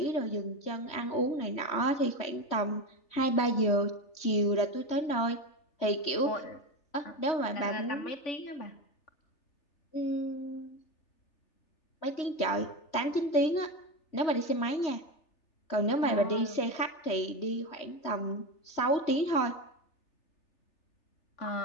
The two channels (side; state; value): right; late; 3.1 ms